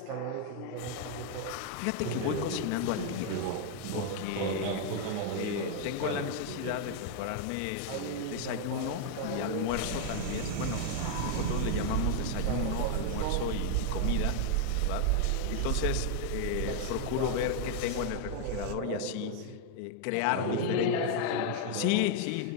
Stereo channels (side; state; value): both; different; correlation 0.00